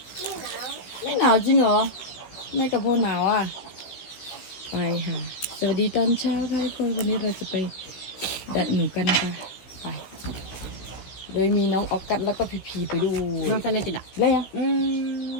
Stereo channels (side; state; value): right; late; 16 ms